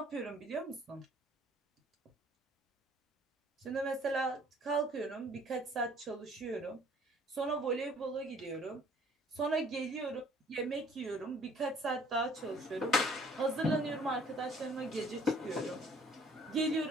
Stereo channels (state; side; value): normal; both; correlation 0.57